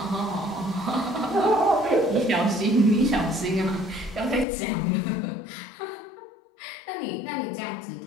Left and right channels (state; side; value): drops out; right; at 4.5 s